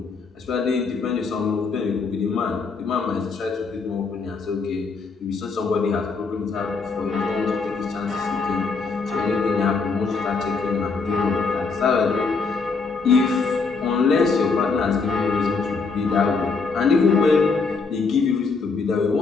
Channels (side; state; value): right; quieter; 4.5 dB